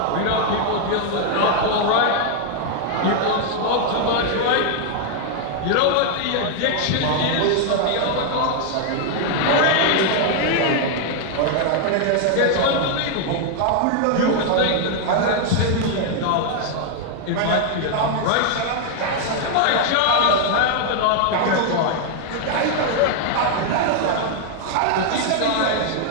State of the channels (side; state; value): both; different; correlation 0.00